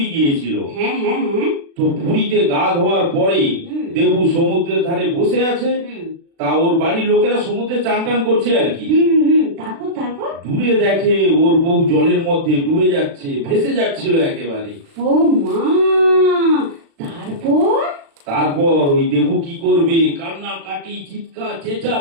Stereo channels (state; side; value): late; left; 36 ms